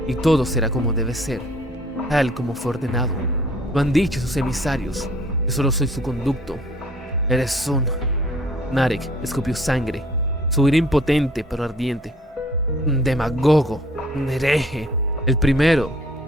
y todo será como debe ser, tal como fue ordenado. Lo han dicho sus emisarios. Yo solo soy su conducto. Eres un... Narek escupió sangre. Su ira impotente pero ardiente. Un demagogo, un hereje. El primero,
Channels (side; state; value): both; normal; correlation 0.56